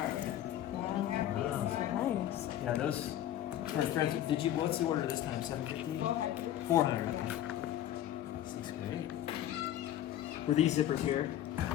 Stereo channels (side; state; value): right; quieter; 12.1 dB